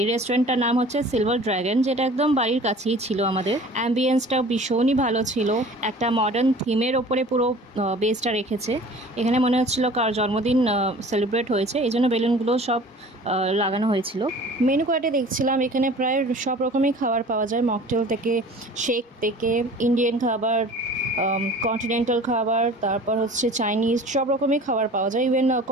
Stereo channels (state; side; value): normal; both; correlation 0.45